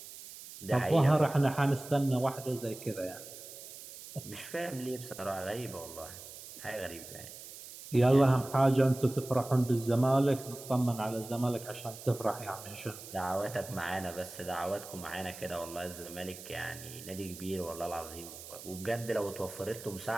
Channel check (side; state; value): right; noise; hiss, 14 dB below the sound